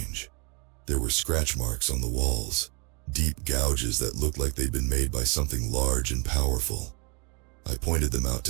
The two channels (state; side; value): quieter; left; 32.5 dB